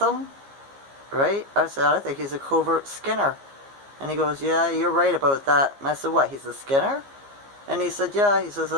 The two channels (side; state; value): left; late; 15 ms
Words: right? I said, I think he's a covert Skinner. And he goes, yeah, you're right about that. And I said, what, he's a Skinner? And he said, yeah. He says,